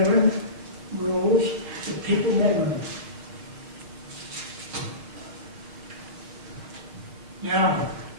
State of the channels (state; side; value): late; left; 6.2 ms